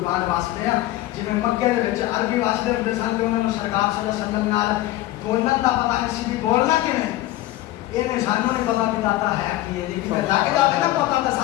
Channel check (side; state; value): right; quieter; 16.2 dB